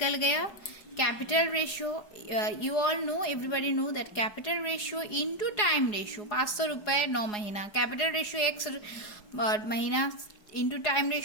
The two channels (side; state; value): right; late; 4.8 ms